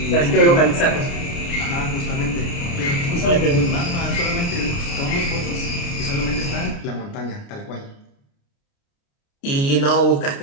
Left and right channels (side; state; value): right; late; 29 ms